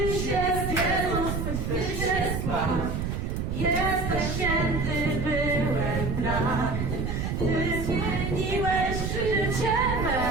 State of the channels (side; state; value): right; noise; rumble, 2 dB below the sound